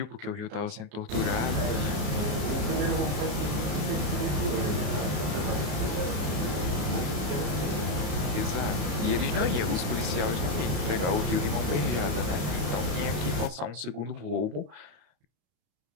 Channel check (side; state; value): left; late; 33 ms